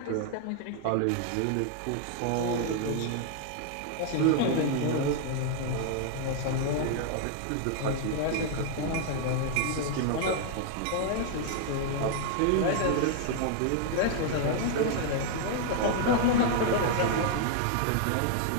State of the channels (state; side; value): different; both; correlation 0.00